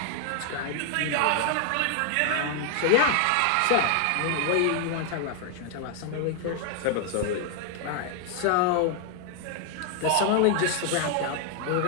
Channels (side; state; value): both; different; correlation 0.00